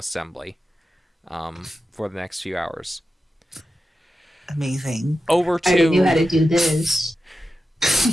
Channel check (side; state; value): both; normal; correlation 0.91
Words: for the next few hours. Amazing. Over I already knew to how to do this.